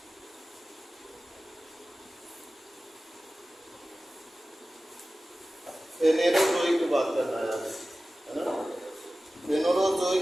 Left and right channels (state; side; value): normal; both; correlation 0.96